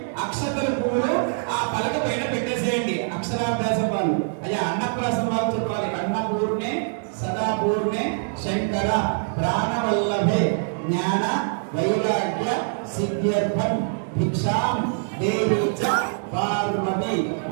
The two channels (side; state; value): left; silent; digital silence